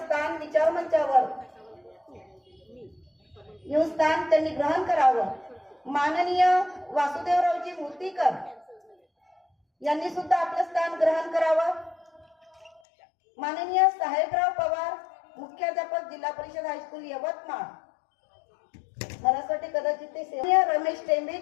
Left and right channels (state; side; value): drops out; right; at 12.8 s